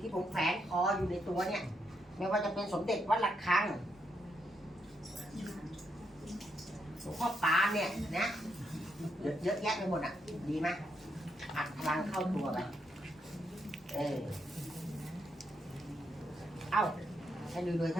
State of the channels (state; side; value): normal; both; correlation 0.79